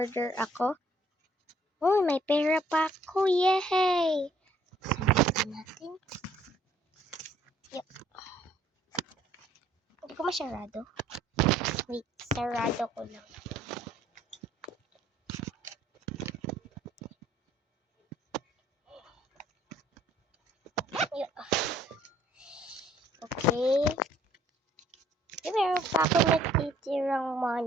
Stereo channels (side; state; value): both; normal; correlation 0.61